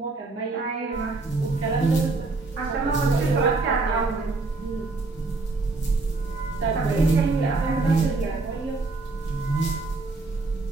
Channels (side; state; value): left; quieter; 3.6 dB